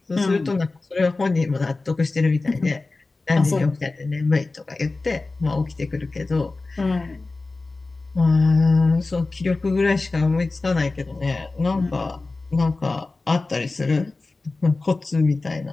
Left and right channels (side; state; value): right; quieter; 3.5 dB